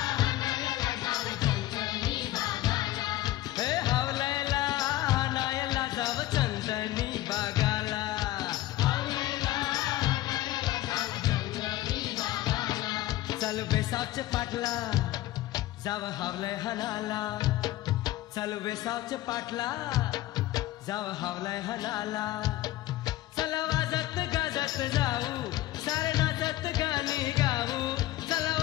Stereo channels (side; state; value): right; quieter; 15.6 dB